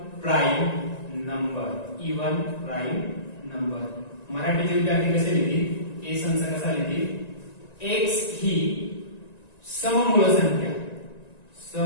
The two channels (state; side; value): late; right; 1.9 ms